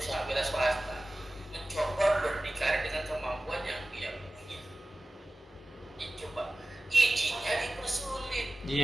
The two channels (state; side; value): normal; both; correlation 0.96